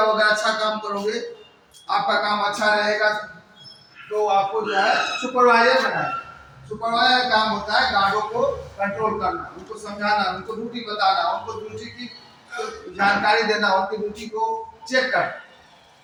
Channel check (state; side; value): identical; both; correlation 1.00